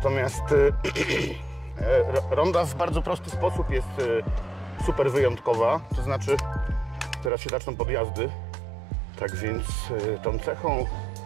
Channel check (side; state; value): left; drops out; at 7.3 s